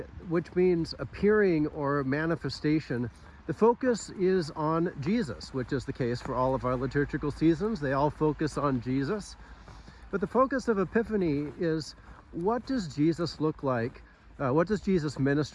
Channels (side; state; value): both; identical; correlation 1.00